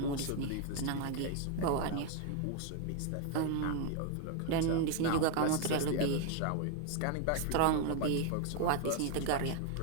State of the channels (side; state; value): both; different; correlation 0.00